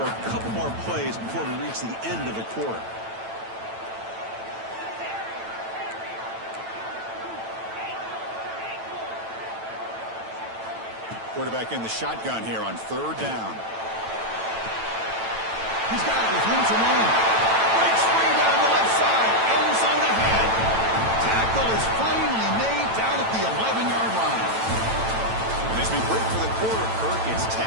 a couple more plays before we reach the end of the quarter. Quarterback in the shotgun here on 3rd down. He's got it with room to run. Breaks free down the left side. End zone ahead. Tackle is finally made down at the 11-yard line. And as we break for the quarter, Kirk, it's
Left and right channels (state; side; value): late; left; 9.0 ms